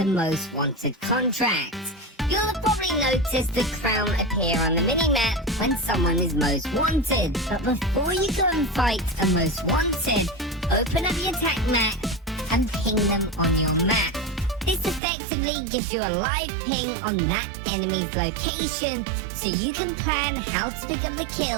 most wanted contracts. You'll have probably noticed the crown appear on the minimap when someone is most wanted. But before you go and fight a most wanted, open up your attack map and ping them on your map. This effectively gives you a live ping on that enemy's location, so you can plan how to pick up the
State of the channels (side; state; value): left; drops out; at 15.0 s